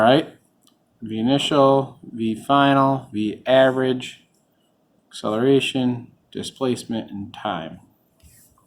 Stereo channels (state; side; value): identical; both; correlation 1.00